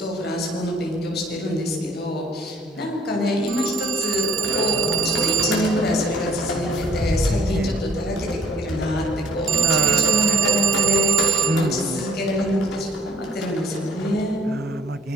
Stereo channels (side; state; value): both; normal; correlation 0.58